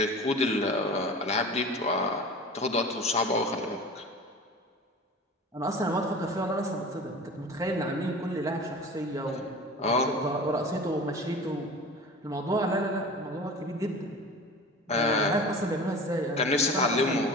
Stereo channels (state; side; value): normal; both; correlation 0.36